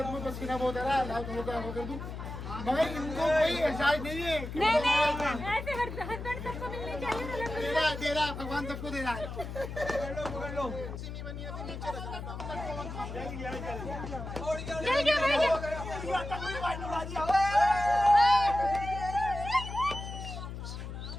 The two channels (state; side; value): noise; left; hum, 8 dB below the sound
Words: तुम्हें पसीना बहुत आ रहा है हो कर दूं, मगर इनको कोई एहसास नहीं है। नहीं ऐसे हस्बैंड सबको मिलने चाहिए। दे रहा भगवान सबको दे रहा है। चल गया भाई।